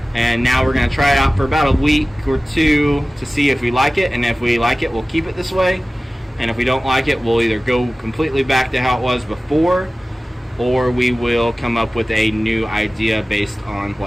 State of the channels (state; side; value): normal; both; correlation 0.97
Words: And now we're going to try it out for about a week or two to see if we like it. And if we like it, we'll keep it this way. And if we don't like it, we'll either go completely back to how it was before, or we will come up with a new idea based on